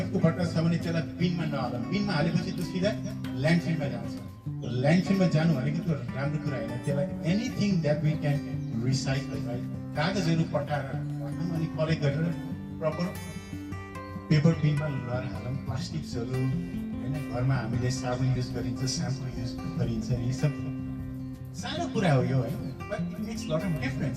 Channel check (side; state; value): both; identical; correlation 1.00